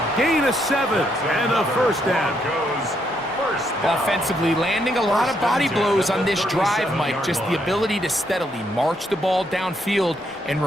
Gain of 7 and a first down. First down. Offensively, landing a lot of body blows on this drive, Mike. Just the ability to steadily march the ball downfield and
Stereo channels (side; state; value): both; normal; correlation 0.75